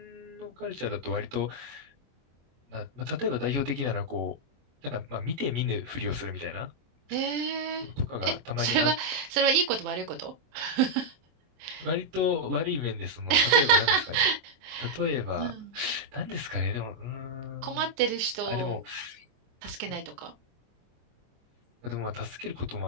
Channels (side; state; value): left; late; 24 ms